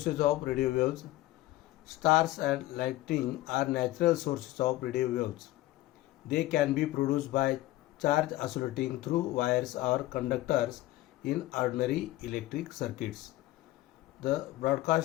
of radio waves. Stars and lightning are natural sources of radio waves. They can be produced by charge oscillating through wires or conductors in ordinary electric circuits. The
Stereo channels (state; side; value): quieter; right; 16.8 dB